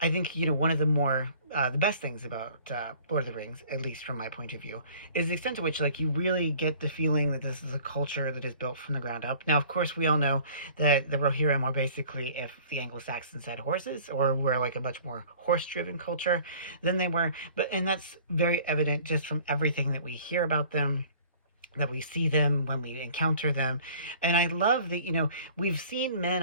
I think, one of the more the best things about Lord of the Rings, at least from my point of view, is the extent to which you really get the feeling that this is a culture that is built from the ground up. Now, of course, we all know that the Rohirrim are basically if the Anglo-Saxons had horses, or were a much more horse-driven culture than they were, and that's very evident just from everything that we hear about them, that we see them when we encounter them. And I love that, we've seen men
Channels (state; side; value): inverted; both; correlation -0.49